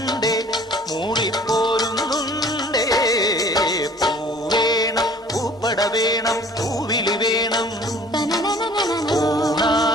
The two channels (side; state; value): both; normal; correlation 0.51